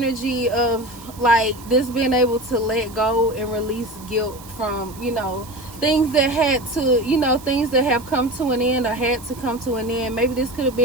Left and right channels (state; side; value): noise; right; hiss, 19 dB below the sound